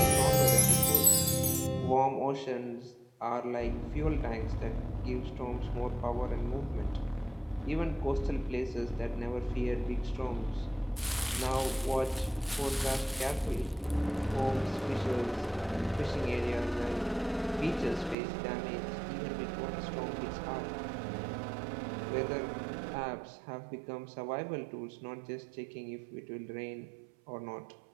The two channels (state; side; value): drops out; left; at 18.2 s